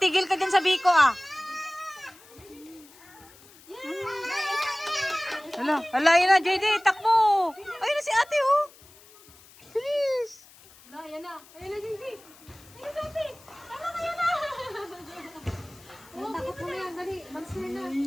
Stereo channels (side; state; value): left; noise; hiss, 24 dB below the sound